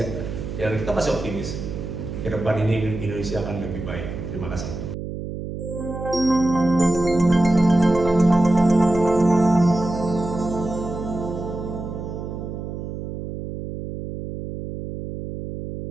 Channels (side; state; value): right; noise; hum, 7 dB below the sound